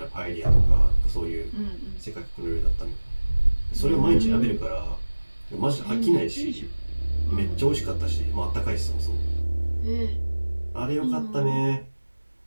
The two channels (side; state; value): both; inverted; correlation -1.00